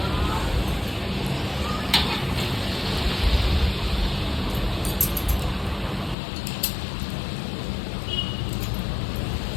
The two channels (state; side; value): drops out; right; at 6.2 s